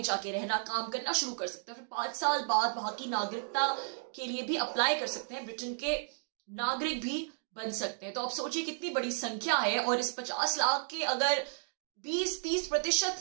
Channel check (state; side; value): silent; left; digital silence